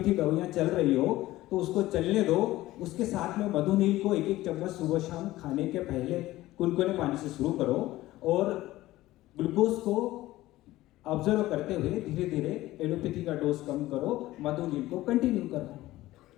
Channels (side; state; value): right; quieter; 16.7 dB